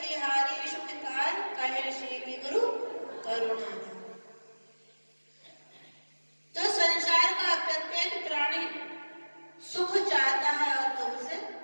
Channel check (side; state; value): both; inverted; correlation -1.00